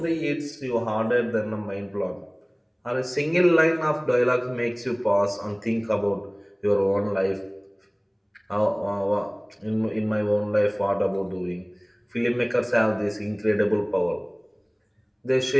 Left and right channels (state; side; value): identical; both; correlation 1.00